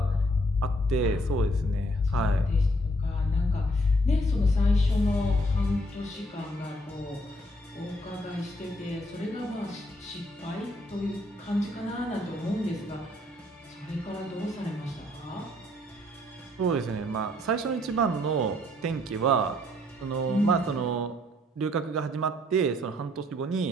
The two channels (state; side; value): normal; both; correlation 0.67